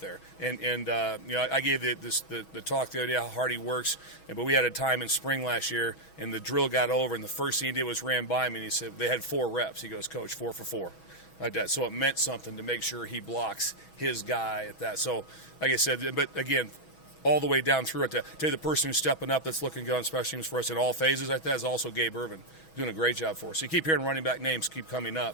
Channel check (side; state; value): right; late; 6.2 ms